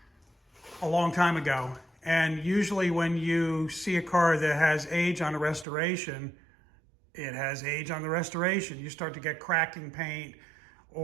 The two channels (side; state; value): left; drops out; at 5.7 s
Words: a long time ago. And usually when you see a car that has age on the restoration, it has age on the restoration. You start to get cracking paint,